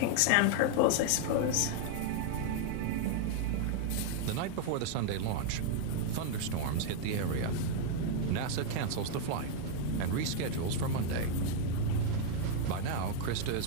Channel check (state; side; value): different; both; correlation 0.00